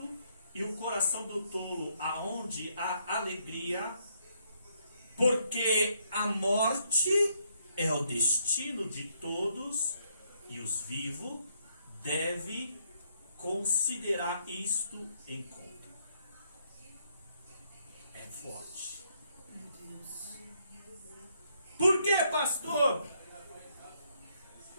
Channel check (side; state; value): both; inverted; correlation -0.72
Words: e o coração do tolo aonde há alegria, porque a morte é o destino de todos e os vivos devem considerar isto em conta. É forte. Por que, pastor?